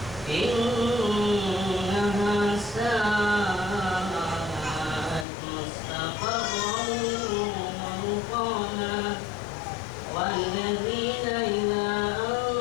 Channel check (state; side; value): drops out; right; at 5.2 s